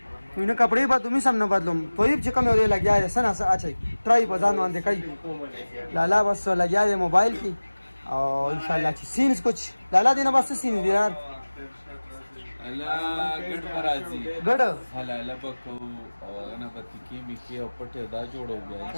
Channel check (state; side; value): inverted; both; correlation -1.00